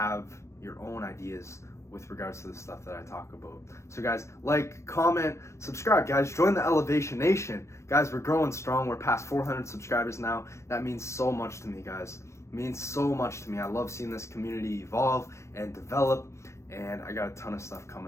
your own ideas with regards to the stuff that I talk about. So guys, like, comment, subscribe, guys. Join the Elevation Nation. Guys, we're growing strong. We're past 400 subscribers now. That means so much to me, guys. It means so much to me. I love seeing this community evolve and develop, and I got a ton of stuff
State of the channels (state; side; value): late; right; 0.14 ms